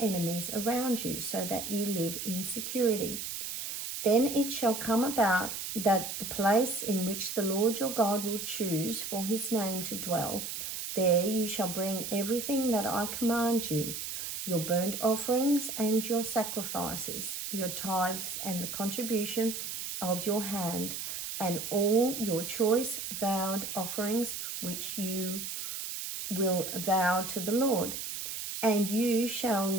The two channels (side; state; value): right; noise; hiss, 5 dB below the sound